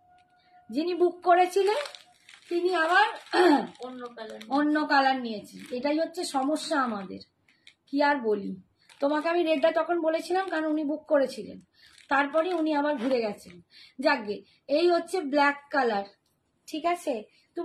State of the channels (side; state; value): both; identical; correlation 1.00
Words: যিনি বুক করেছিলেন তিনি আবার অন্য কালার নিয়েছেন। এটাই হচ্ছে সমস্যা আমাদের, কি আর বলি তোমাকে। আমি রেডটা তখন বলেছিলাম কারণ উনি বুক করেছিলেন, তারপরে উনি আবার ঘুরে গেছেন। যাকগে, এই হচ্ছে ব্ল্যাক কালার, ঠিক আছে।